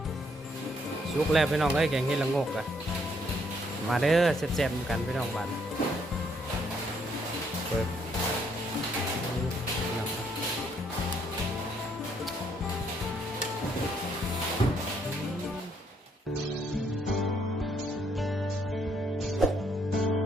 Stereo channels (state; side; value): normal; both; correlation 0.70